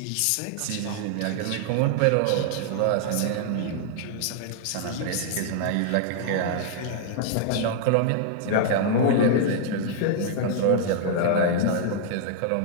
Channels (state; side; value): different; both; correlation -0.01